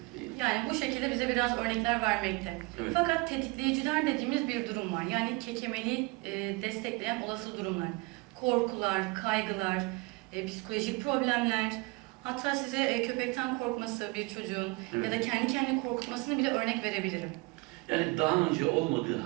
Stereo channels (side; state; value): left; quieter; 26.2 dB